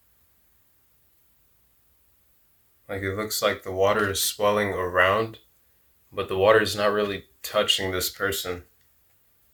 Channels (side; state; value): both; identical; correlation 1.00